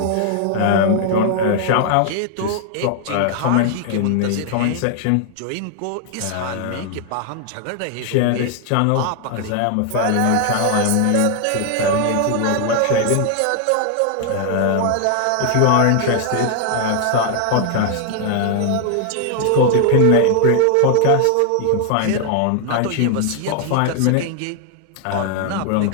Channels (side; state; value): both; different; correlation 0.00